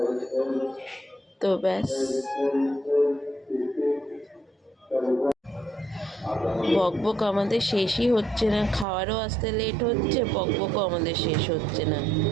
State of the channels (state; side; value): drops out; left; at 8.8 s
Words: তো ব্যাস, বকবক আমাদের শেষই হচ্ছে না, খাওয়ারও আসতে লেট হচ্ছে, বকবকও আমাদের শেষ হচ্ছে না,